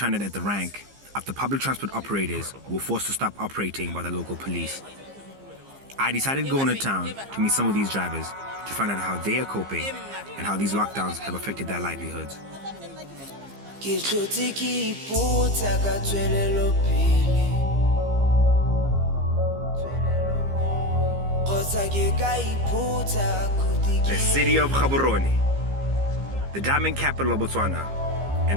at the rank after public transport operators were forced to stop operating by the local police. I decided to go into town to meet some of these drivers to find out how they are coping and how these lockdowns have affected their livelihoods. The city of Gaborone, the diamond capital of Botswana,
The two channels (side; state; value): left; late; 15 ms